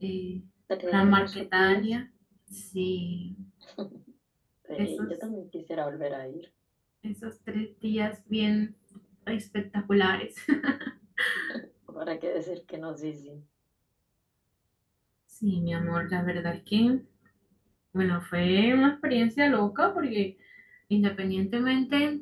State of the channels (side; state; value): both; identical; correlation 1.00